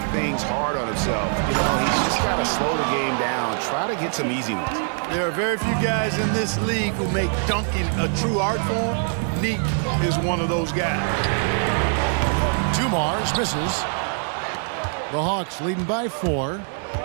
things hard on himself. You know, he's just got to slow the game down, try to get some easy ones. There are very few guys in this league who make dunking a true art form. Neek is one of those guys. Dumars misses. The Hawks leading by 4.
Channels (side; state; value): left; silent; 55 dB below the other